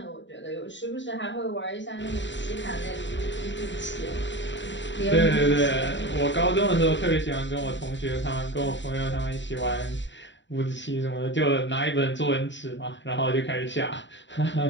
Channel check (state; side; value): late; right; 0.53 ms